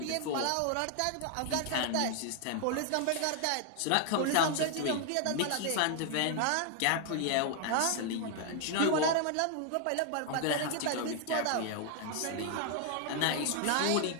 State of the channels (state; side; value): different; both; correlation 0.00